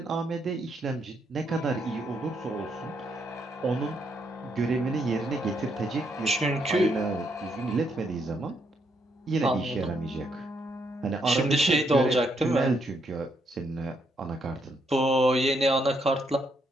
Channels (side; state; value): both; normal; correlation 0.75